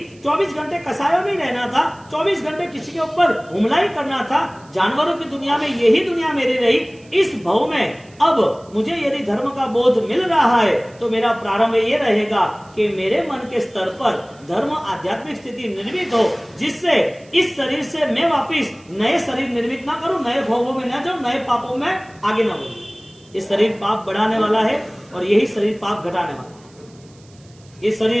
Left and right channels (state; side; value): noise; right; hiss, 29 dB below the sound